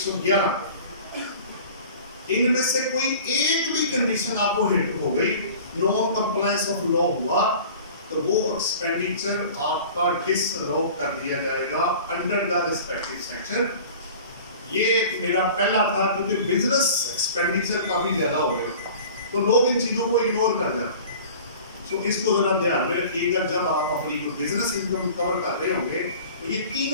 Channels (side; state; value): both; inverted; correlation -0.43